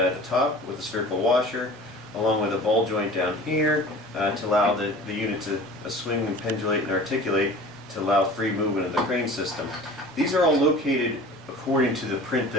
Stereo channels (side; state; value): both; normal; correlation 0.42